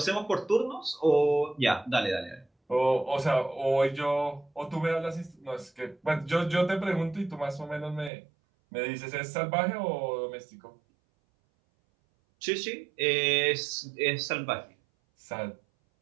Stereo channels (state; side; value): drops out; left; at 8.1 s